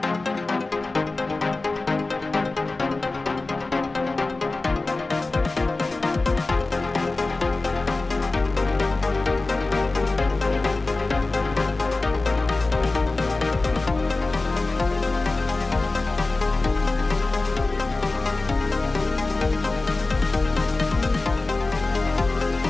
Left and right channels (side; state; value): right; quieter; 3.3 dB